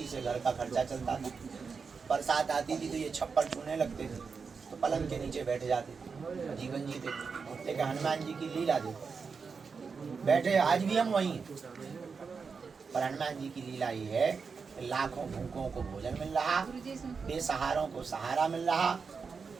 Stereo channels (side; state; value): left; quieter; 5.3 dB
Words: से घर का खर्चा चलता था। बरसात आती थी तो ये छप्पर छूने लगते थे, तो पलंग के नीचे बैठ जाते थे, जीवन जीते। लेकिन हनुमान जी की लीला देखो, बैठे आज भी हम वहीं हैं, पर हनुमान जी की लीला ये है कि लाखों भूखों को भोजन मिल रहा, बेसहारों को सहारा मिल रहा,